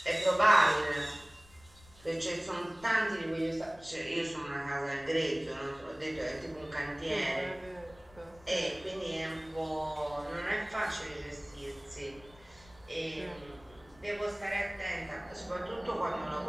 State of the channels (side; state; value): left; noise; rumble, 24 dB below the sound